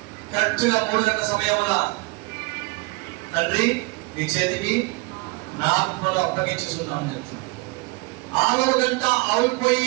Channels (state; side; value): quieter; left; 25.7 dB